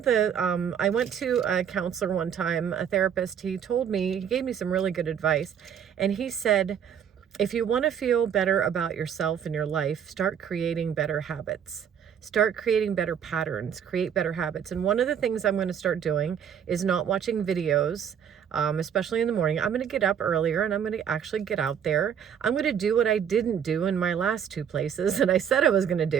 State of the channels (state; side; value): quieter; left; 8.3 dB